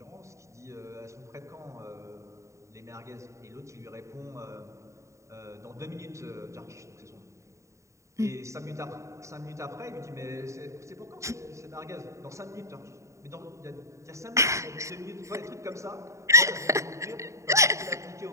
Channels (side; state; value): left; late; 0.14 ms